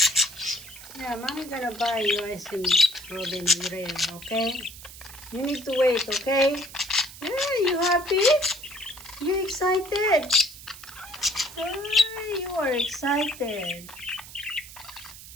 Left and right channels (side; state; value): right; noise; hiss, 16 dB below the sound